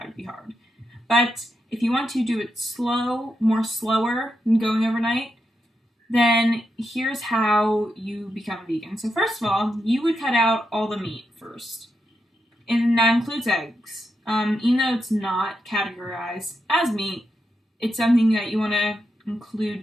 would be hard. But if you want to do it slower than going overnight, then here's how you become vegan. So first of all, you would cut out all the meat first. And that includes eggs. Even though it's not categorized as meat, it's something that you want to include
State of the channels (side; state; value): both; normal; correlation 0.85